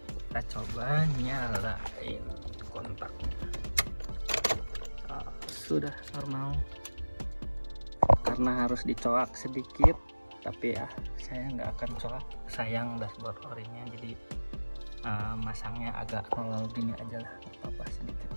kita coba nyalain kontaknya. Sudah normal, karena harus dicoak sedikit, tapi ya saya nggak akan coak, sayang dashboard orinya, jadi masangnya agak nol gini aja lah, apa-apa sedikit.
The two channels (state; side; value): inverted; both; correlation -1.00